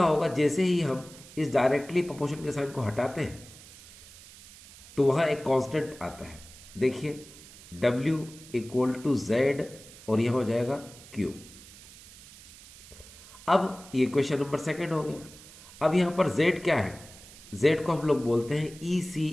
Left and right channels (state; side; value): noise; right; hiss, 19 dB below the sound